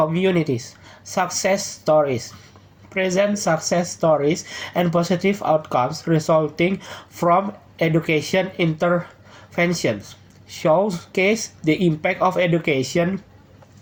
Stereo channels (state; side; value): identical; both; correlation 1.00